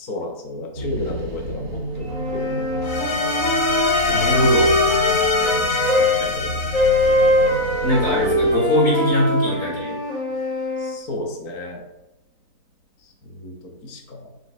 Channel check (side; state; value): right; late; 3.9 ms